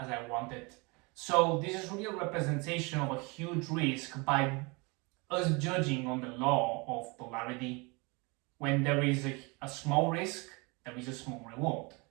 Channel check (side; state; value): left; quieter; 28.2 dB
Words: I wanted. So this is really a representation of a huge risk by us judging on the law of polarity. When there is a small risk, there is a small reward.